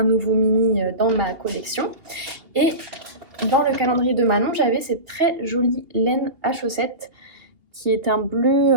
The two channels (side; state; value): left; late; 2.8 ms